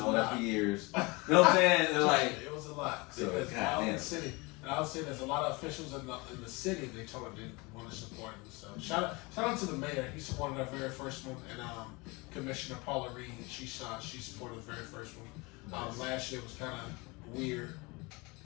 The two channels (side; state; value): right; quieter; 26.0 dB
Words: that for years. You know what I'm saying? It was a lot. So, because in the city, and I would say there's a lot of officials in the city they told them didn't want to support him. So shout out to the mayor. He supported our very first one, and Commissioner Paula Reed, she supported the very first one. Nice. Last year was kind of weird